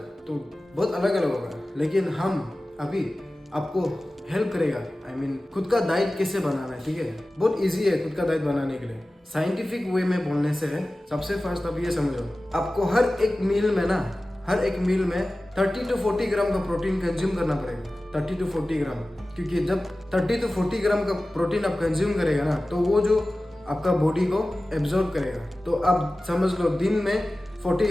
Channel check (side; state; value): both; normal; correlation 0.96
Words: तो बहुत अलग अलग होगा। लेकिन हम अभी आपको हेल्प करेगा, खुद का डाइट कैसे बनाना है, ठीक है? बहुत इजी है खुद का डाइट बनाने के लिए। साइंटिफिक वे में बोलने से है, सबसे फर्स्ट आप ये समझो, आपको हर एक मील में 30 to 40 ग्राम का प्रोटीन कंज्यूम करना पड़ेगा। 30 to 40 ग्राम, क्योंकि जब 30 to 40 ग्राम का प्रोटीन आप कंज्यूम करेगा ना, तो वो जो आपका बॉडी को एब्जॉर्ब करेगा। तो आप समझ लो दिन में